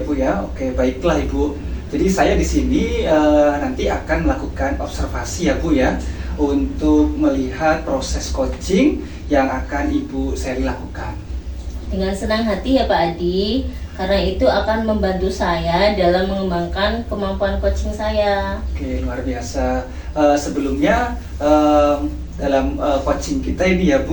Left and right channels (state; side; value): identical; both; correlation 1.00